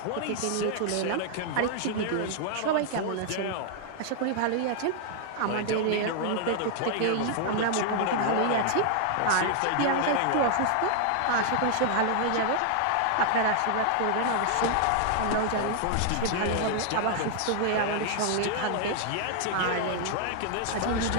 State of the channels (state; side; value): different; both; correlation -0.01